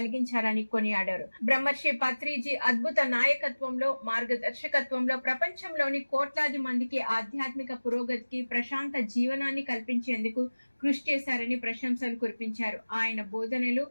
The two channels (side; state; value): both; inverted; correlation -1.00